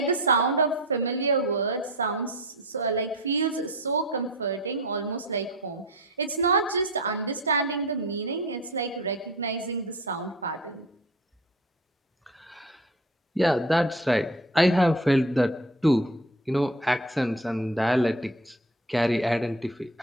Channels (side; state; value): both; normal; correlation 0.35